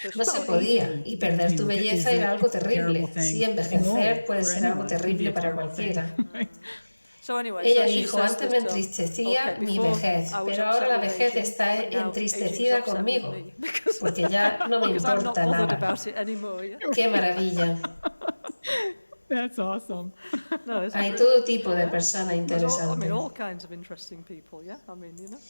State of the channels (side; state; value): both; inverted; correlation -1.00